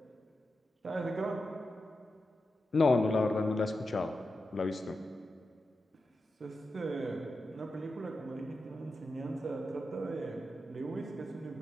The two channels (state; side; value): normal; both; correlation 0.90